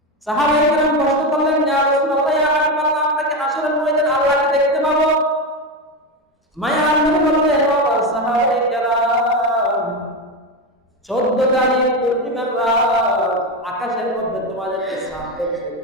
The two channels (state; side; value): normal; both; correlation 0.15